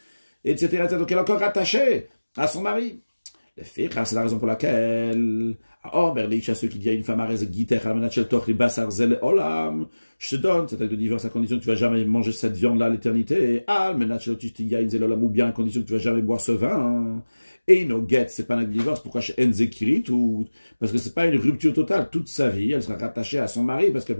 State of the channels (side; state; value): both; inverted; correlation -1.00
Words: etc., etc. Donc elle est encore rattachée à son mari. Les filles, c'est la raison pour laquelle, à ceux qui disent à une femme, je te donne cet acte de divorce à condition que tu ne vas jamais manger cette viande-là à l'éternité, ou bien à condition que tu ne vas jamais boire ce vin. Et no get, c'est pas un acte de divorce, pourquoi chez Enzekirit, ou parce que c'est pas une rupture totale, toute sa vie, elle sera rattachée à son mari parce qu'elle